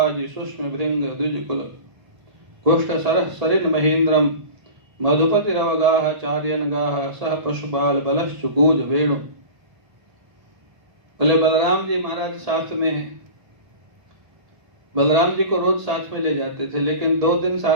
सुष्म भृंग द्विजकुल कुष्ठ सरह सरिन महेंद्रम मधुपति रवगाह चार्यन गाह सह पशुपाल बलश्चुकूज वेणु। बोले बलराम जी महाराज साथ में है। बलराम जी को रोज साथ में ले जाते थे, लेकिन 2 दिन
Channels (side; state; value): left; late; 1.8 ms